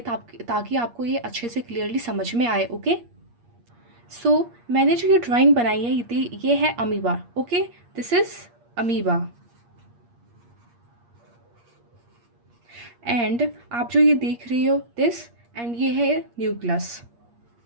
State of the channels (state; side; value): late; left; 8.5 ms